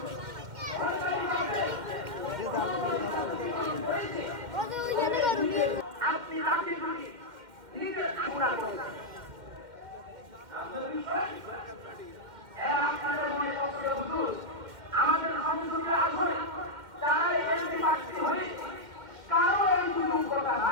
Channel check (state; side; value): late; left; 2.1 ms